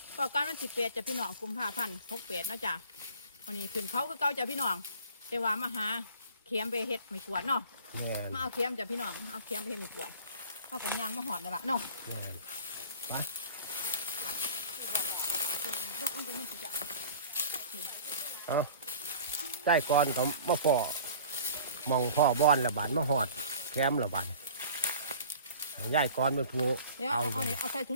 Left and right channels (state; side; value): inverted; both; correlation -0.45